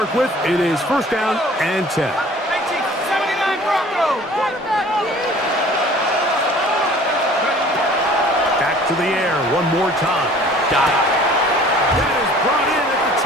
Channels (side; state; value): both; normal; correlation 0.49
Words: with. It is 1st down and 10. 79 Broncos. Back to the air one more time. Got it. That is brought in at the